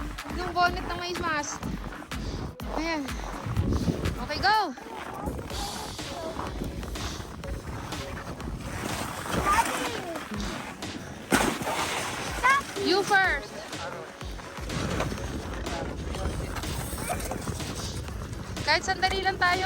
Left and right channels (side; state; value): both; identical; correlation 1.00